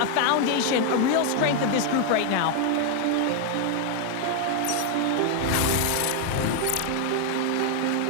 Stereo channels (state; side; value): different; both; correlation 0.00